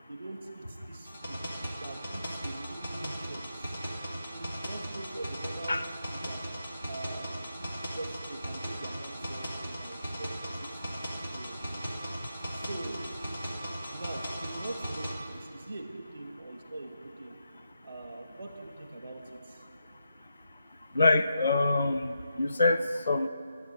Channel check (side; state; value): both; inverted; correlation -0.85